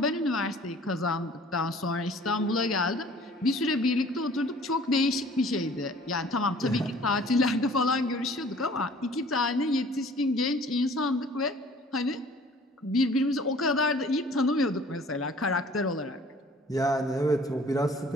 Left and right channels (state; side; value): normal; both; correlation 0.51